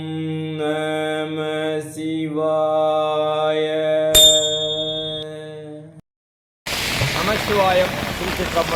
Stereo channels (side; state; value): both; identical; correlation 1.00